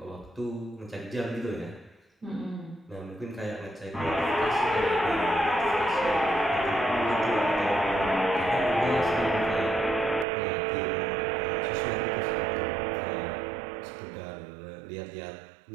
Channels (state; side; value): drops out; left; at 10.2 s